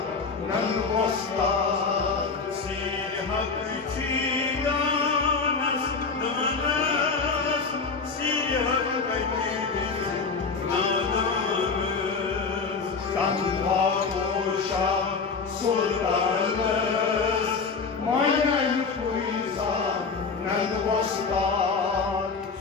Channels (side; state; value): right; quieter; 4.8 dB